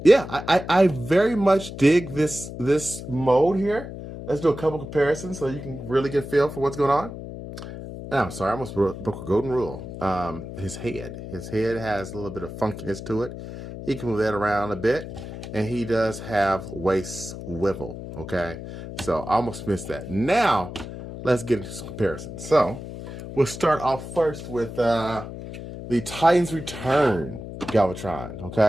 I very much dig this mode here. Let's do a couple comparisons so you can really get a feel for what's going on. Oh, I'm sorry, I almost broke a golden rule. His head has a little bit of funkiness to it. He can move that around a bit, and he does have waist swivel. Okay, so I almost missed that. Now, let's get into some comparisons. So, we'll start off first with the Titans Return Galvatron.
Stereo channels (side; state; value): left; noise; hum, 10 dB below the sound